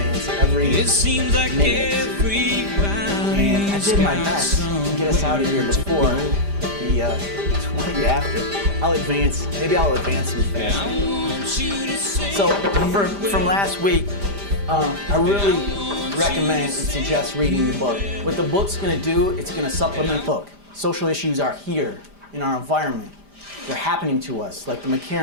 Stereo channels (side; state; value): left; late; 5.0 ms